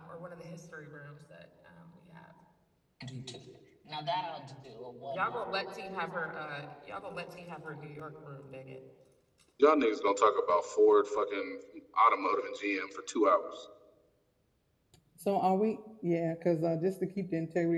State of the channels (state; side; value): identical; both; correlation 1.00